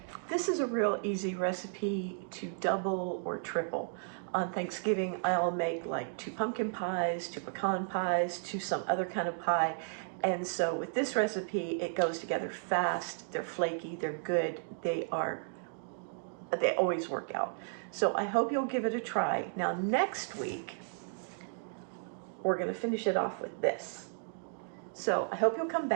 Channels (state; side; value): silent; left; digital silence